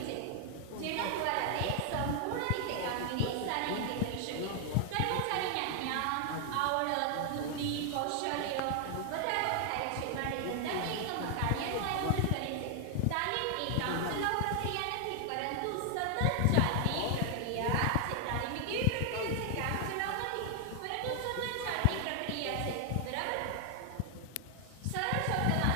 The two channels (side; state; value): both; different; correlation 0.00